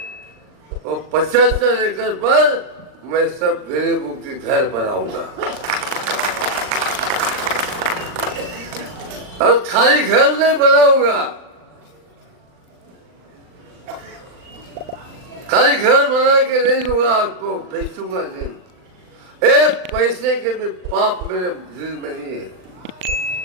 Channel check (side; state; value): left; late; 39 ms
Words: और 75 एकड़ पर मैं सब गरीबों के घर बनाऊंगा। और खाली घर नहीं बनाऊंगा, खाली घर बना के नहीं दूंगा आपको, बेचूंगा नहीं। एक पैसे के भी पाप मेरे दिल में नहीं है।